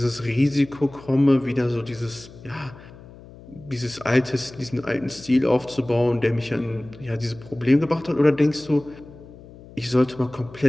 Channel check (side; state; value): left; noise; hum, 19 dB below the sound